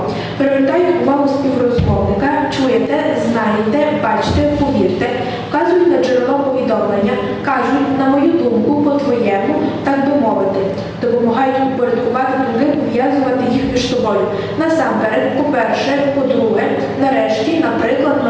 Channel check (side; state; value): both; identical; correlation 1.00